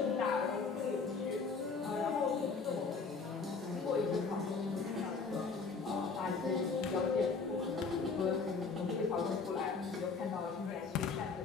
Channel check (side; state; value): right; quieter; 4.7 dB